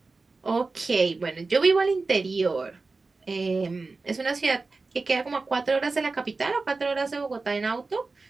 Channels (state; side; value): quieter; left; 3.8 dB